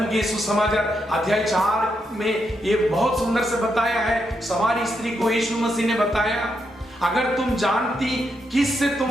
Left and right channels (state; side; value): normal; both; correlation 0.81